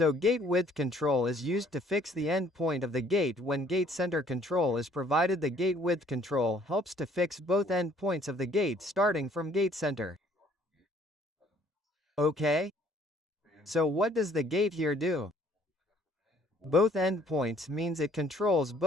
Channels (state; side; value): normal; both; correlation 0.60